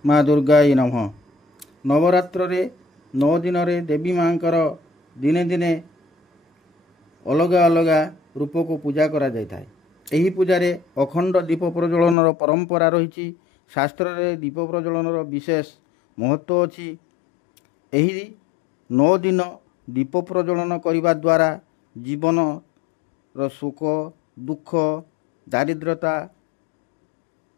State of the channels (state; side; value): drops out; right; at 12.2 s